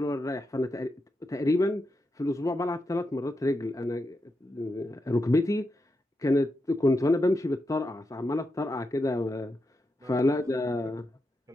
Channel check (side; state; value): both; normal; correlation 0.86